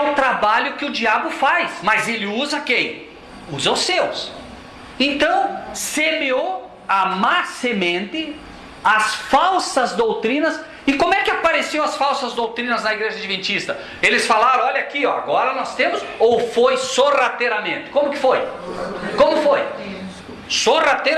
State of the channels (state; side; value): identical; both; correlation 1.00